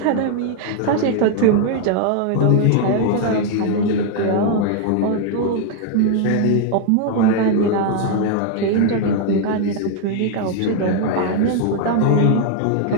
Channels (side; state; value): both; different; correlation 0.00